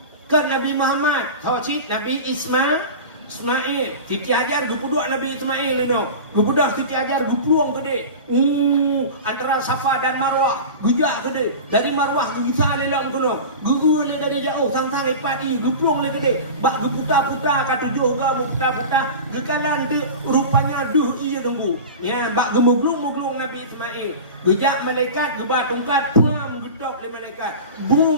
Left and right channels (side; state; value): both; inverted; correlation -0.31